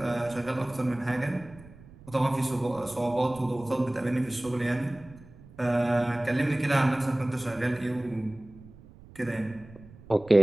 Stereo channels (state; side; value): noise; right; rumble, 21 dB below the sound